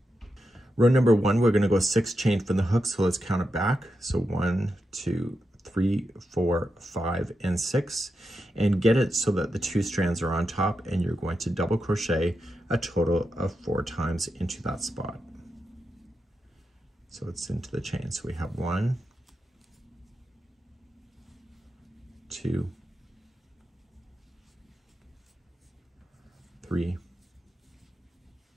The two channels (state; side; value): normal; both; correlation 0.87